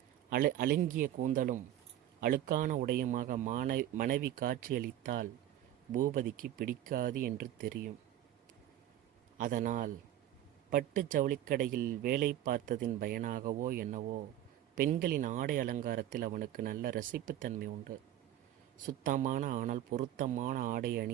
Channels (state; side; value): quieter; left; 12.4 dB